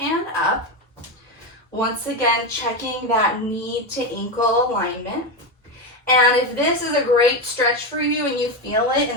up. Once again, checking that knee to ankle alignment. And if this is a great stretch for you and you feel it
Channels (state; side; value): normal; both; correlation 0.13